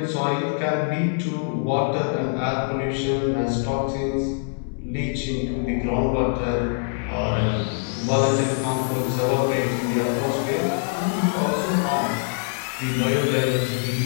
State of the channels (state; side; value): silent; right; 63 dB below the other